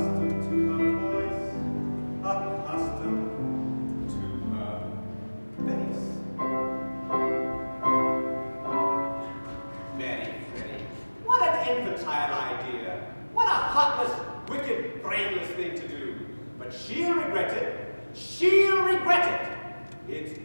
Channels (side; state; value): both; inverted; correlation -1.00